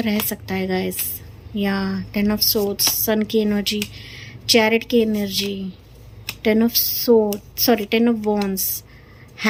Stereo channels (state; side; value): identical; both; correlation 1.00